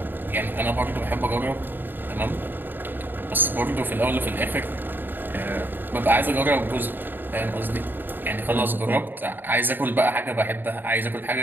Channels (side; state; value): left; late; 0.093 ms